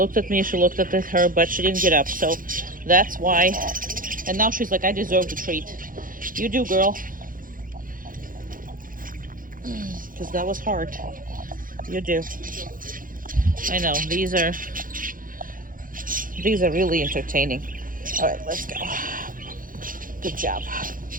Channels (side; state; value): left; late; 0.40 ms